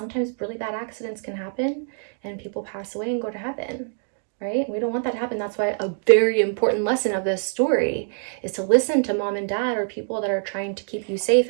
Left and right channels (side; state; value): left; silent; 62 dB below the other